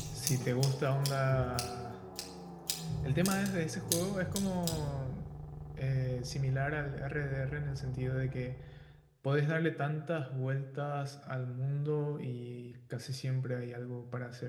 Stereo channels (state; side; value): identical; both; correlation 1.00